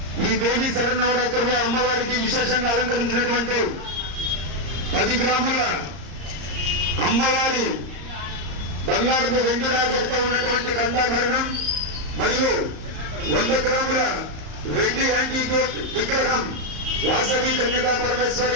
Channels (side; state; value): left; late; 34 ms